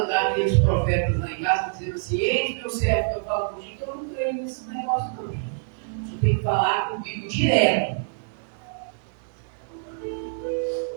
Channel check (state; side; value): silent; left; 61 dB below the other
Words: aqueles profetas lá em casa dizendo assim, eis meu servo que eu falo contigo, que eu não creio nesse negócio não. O Senhor tem que falar comigo direto.